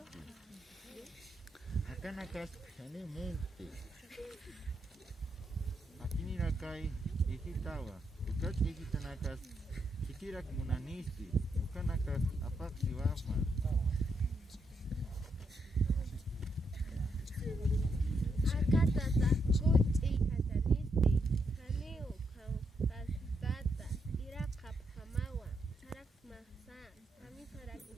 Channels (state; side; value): normal; both; correlation 0.79